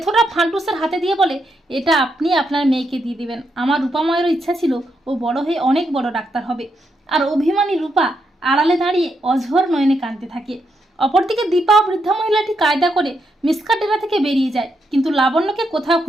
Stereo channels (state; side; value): normal; both; correlation 0.81